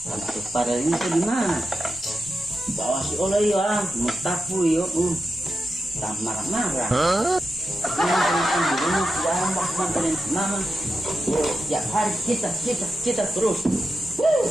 Untuk pada ini tuh di mana? Bawa si oleh ya, mutapu yo. Tak marah-marah. Mama, tiap hari kita terus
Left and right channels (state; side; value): normal; both; correlation 0.89